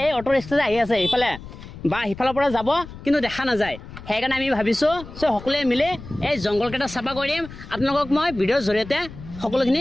এই অটো ৰিক্সা যে আহি আছে ইফালে বা সিফালৰ পৰা যাব কিন্তু দেখা নাযায় সেইকাৰণে আমি ভাবিছোঁ চ' সকলোৱে মিলি এই জংঘলকেইটা চাফা কৰি দিম আপোনালোকক মই ভিডিঅ'ৰ জৰিয়তে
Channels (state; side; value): noise; left; rumble, 14 dB below the sound